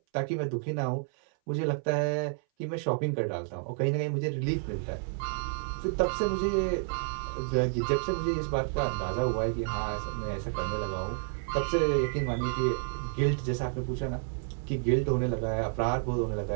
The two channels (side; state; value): left; silent; 58 dB below the other